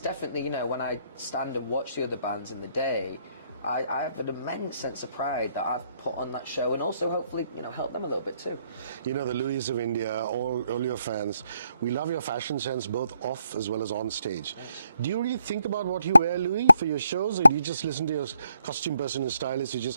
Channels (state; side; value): inverted; both; correlation -0.75